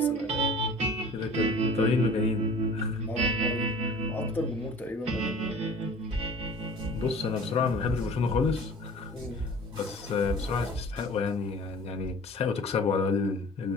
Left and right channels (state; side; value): normal; both; correlation 0.44